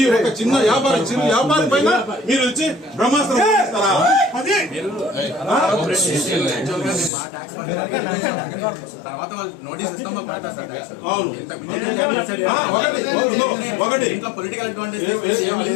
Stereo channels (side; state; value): right; drops out; at 7.1 s